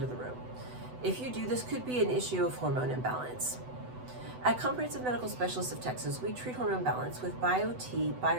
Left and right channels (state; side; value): late; left; 8.0 ms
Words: the room? If you do, this could be an issue of hormone imbalance. At Comprehensive Medical Specialists of Texas, we treat hormone balance with BioTe